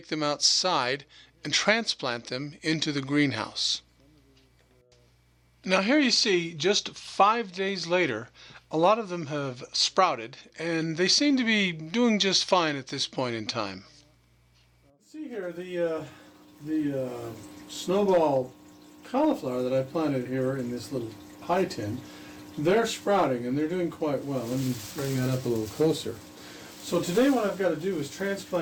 them outside and transplant them into the greenhouse. Now here you see, just 5 days later, a lot of them have sprouted, and they seem to be doing just fine at this point in time. See here, the snowball cauliflower that I planted here in this little pie tin, they're sprouting and they're doing quite well. Let me bring that up a little closer. So today what I've got to do is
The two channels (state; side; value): identical; both; correlation 1.00